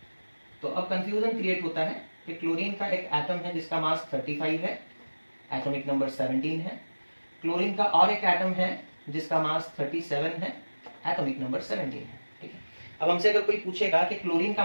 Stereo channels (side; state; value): both; inverted; correlation -1.00